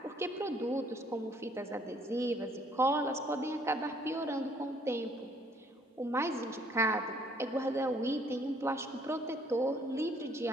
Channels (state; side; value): normal; both; correlation 0.63